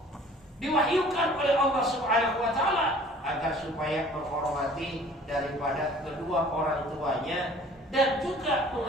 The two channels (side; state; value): both; normal; correlation 0.51